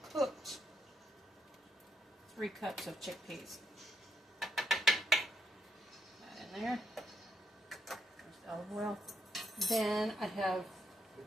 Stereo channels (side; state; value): both; normal; correlation 0.75